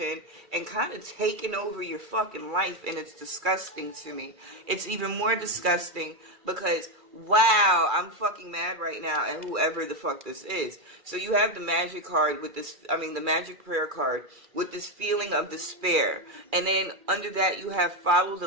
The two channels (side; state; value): left; late; 2.3 ms